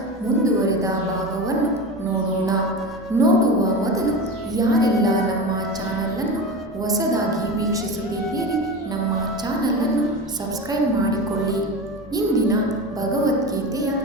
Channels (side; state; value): right; noise; rumble, 26 dB below the sound